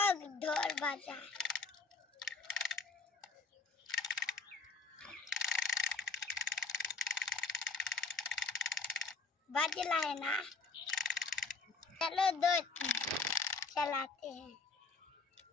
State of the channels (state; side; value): quieter; right; 4.4 dB